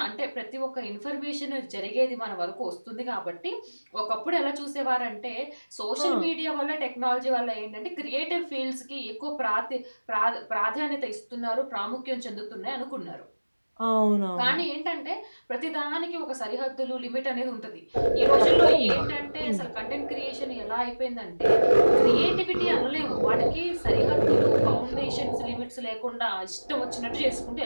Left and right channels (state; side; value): inverted; both; correlation -1.00